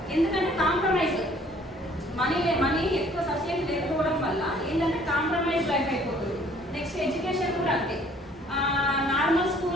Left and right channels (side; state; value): both; normal; correlation 0.58